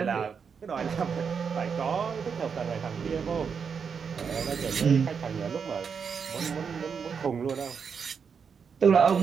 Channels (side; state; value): left; quieter; 6.3 dB